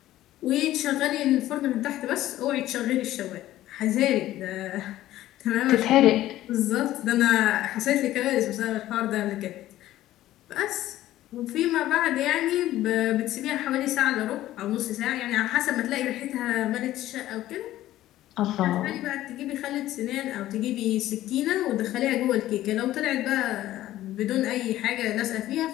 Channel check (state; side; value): quieter; right; 14.4 dB